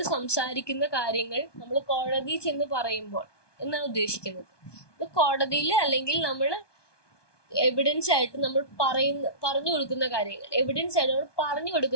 സംസാരിക്കുന്ന കാര്യങ്ങൾ നമ്മൾ കോടതി ചെന്ന് പറയുമ്പോൾ എന്നാണ് ഉദ്ദേശിക്കുന്നത്. ഇത് കോടതിയിൽ അല്ലെങ്കിൽ നമ്മൾ എവിഡൻസ് ആയിട്ട് നമ്മൾ പറഞ്ഞു കൊടുക്കുന്ന കാര്യങ്ങൾ, എവിഡൻസ് ആയിട്ട് നമ്മൾ പറഞ്ഞു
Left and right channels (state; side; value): late; right; 1.2 ms